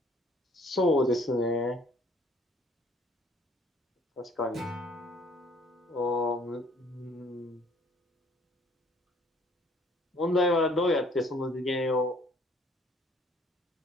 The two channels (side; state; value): both; normal; correlation 0.59